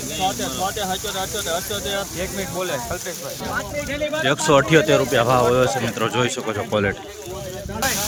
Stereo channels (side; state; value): both; identical; correlation 1.00